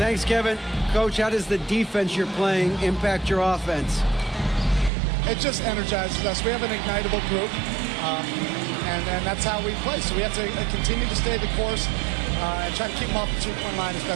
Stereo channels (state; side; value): drops out; left; at 4.9 s